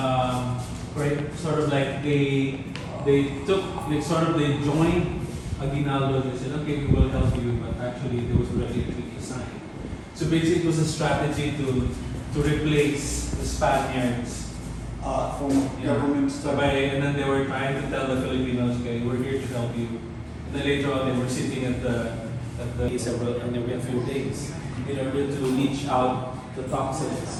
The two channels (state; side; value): identical; both; correlation 1.00